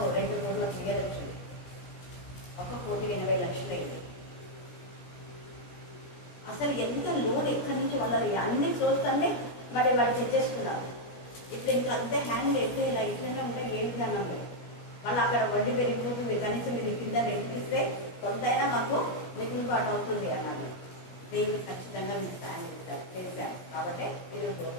2 కోట్ల క్లియర్ వచ్చింది. 1,80,00,000 అయింది. అసలు ఎంత లోన్ ఎక్కడి నుంచి వాళ్ళని అన్ని సోర్స్ అన్ని మరి వాళ్ళు తెచ్చేస్తున్నారు. ఇప్పుడు ఇంకా అంతే హ్యాండ్ ఎట్లా ఇలా ఇట్లనే ఉంటే ఏ విధానం లేదు. మళ్ళీ అక్కడ వడ్డీ పెరిగిపోతుంది. కనీసం మీరు కింద రెంటిస్తే కొంతైనా మాకు మిగులుబాటు అవుతుంది అన్నాడు. దేవుడు ఖచ్చితంగా మీకు సాయం చేశారు, చేశారు. కాబట్టి ఈరోజు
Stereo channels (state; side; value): late; right; 17 ms